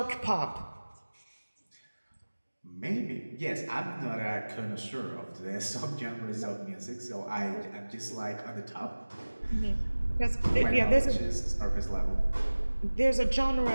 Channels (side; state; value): both; inverted; correlation -1.00